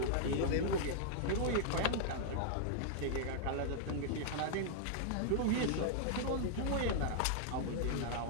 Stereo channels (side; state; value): both; different; correlation -0.01